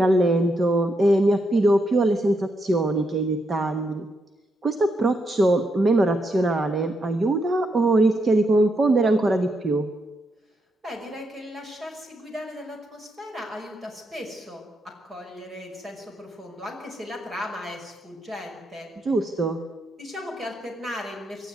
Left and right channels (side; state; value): both; normal; correlation 0.80